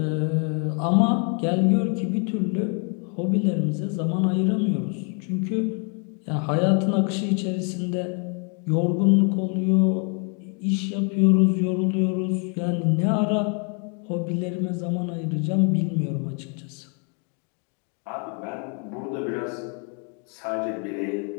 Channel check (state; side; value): quieter; right; 38.5 dB